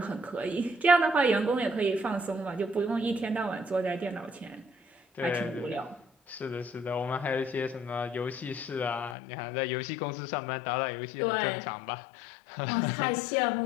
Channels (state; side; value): drops out; right; at 9.2 s